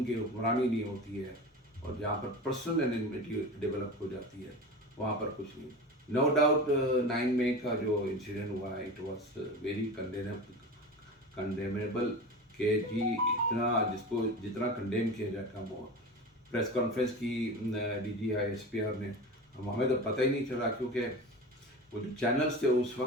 کی حکمرانی نہیں ہوتی ہے، اور جہاں پر پرسنل انمیٹی ڈیولپ ہو جاتی ہے، وہاں پر کچھ نہیں۔ نو ڈاؤٹ 9 مئی کا جو انسیڈنٹ ہوا ہے، اٹ واز ویری کنڈیمیبل، کہ جی اتنا جس کو جتنا کنڈیم کیا جائے کم ہوا۔ پریس کانفرنس کی D G I S P R نے، ہمیں تو پتہ ہی نہیں چلا، کیونکہ وہ جو چینلز تھے اس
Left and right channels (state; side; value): normal; both; correlation 0.30